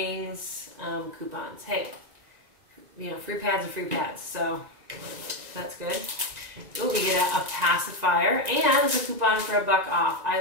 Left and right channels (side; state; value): left; late; 1.9 ms